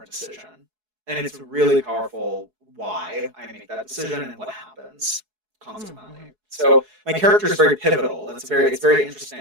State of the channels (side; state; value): left; late; 4.7 ms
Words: decision. And it's really powerful why I make that decision and what happens consequently. So my character is very pivotal. It's very